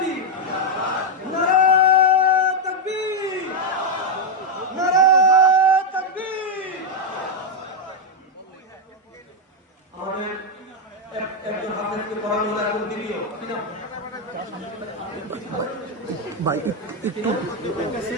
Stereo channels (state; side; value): normal; both; correlation 0.03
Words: নারে তাকবীর নারে তাকবীর। আমাদের একজন হাফেজকে পড়ানো হলো এখন দ্বিতীয় ভাই একটু